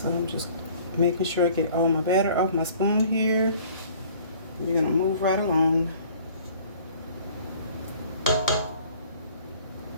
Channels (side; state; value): both; inverted; correlation -0.53